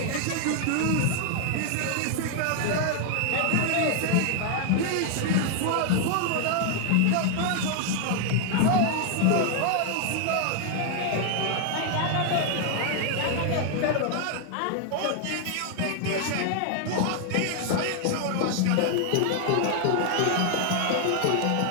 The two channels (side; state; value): both; different; correlation 0.00